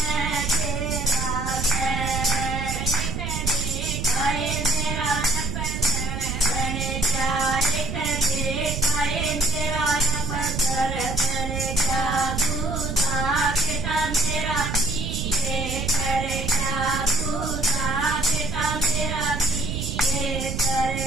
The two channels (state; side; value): noise; right; rumble, 3 dB below the sound